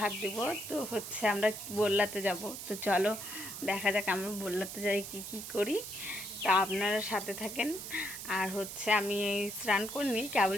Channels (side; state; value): right; noise; hiss, 8 dB below the sound